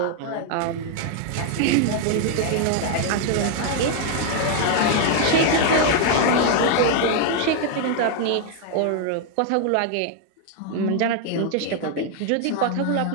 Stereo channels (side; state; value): both; different; correlation 0.00